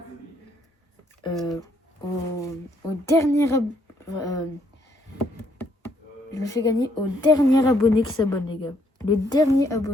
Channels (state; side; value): normal; both; correlation 0.70